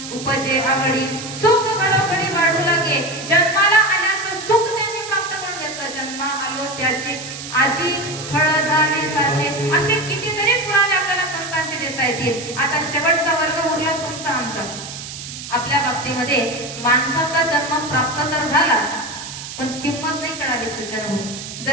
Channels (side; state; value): right; noise; hiss, 10 dB below the sound